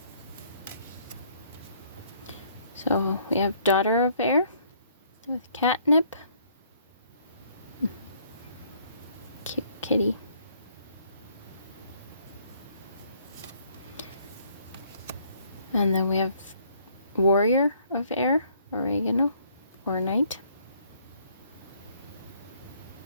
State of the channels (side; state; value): both; inverted; correlation -0.64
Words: So we have daughter of air with catnip. Cute kitty. And then we have warrior of air, oregano, or night.